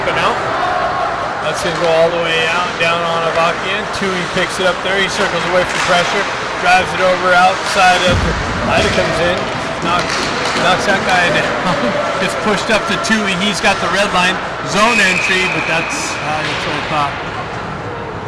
and out. That's going to go all the way out, down on Avakian. Tui picks it up there. He circles away from pressure. Drives it over outside of Ida comes in. Knocks that guy down. It's pushed up to Tui. He's got the red line. Zone entry, but that's what I thought.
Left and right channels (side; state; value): both; identical; correlation 1.00